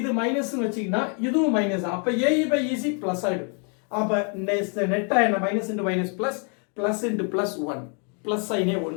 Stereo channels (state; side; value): quieter; right; 39.5 dB